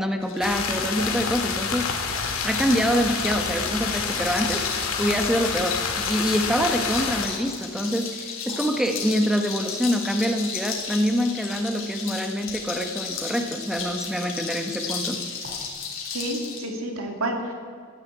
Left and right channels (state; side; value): normal; both; correlation 0.60